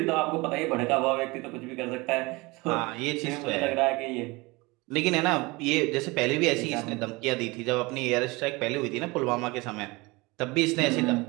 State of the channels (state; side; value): quieter; left; 24.1 dB